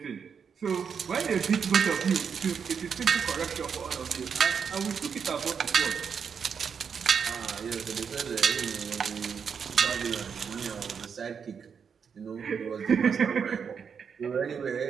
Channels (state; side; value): quieter; left; 6.7 dB